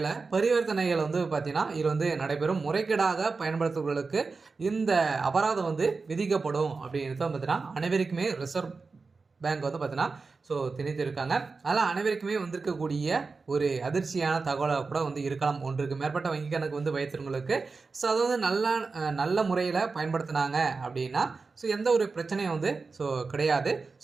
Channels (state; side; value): quieter; left; 4.3 dB